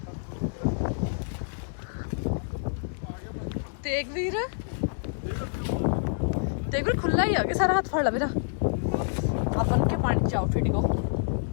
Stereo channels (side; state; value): right; silent; digital silence